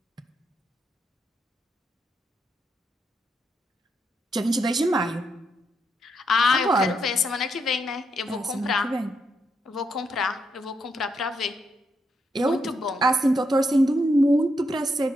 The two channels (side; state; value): both; normal; correlation 0.80